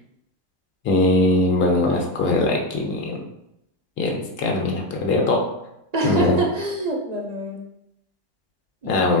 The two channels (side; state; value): left; late; 1.9 ms